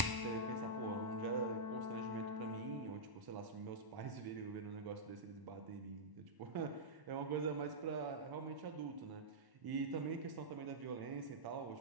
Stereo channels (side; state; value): left; late; 1.1 ms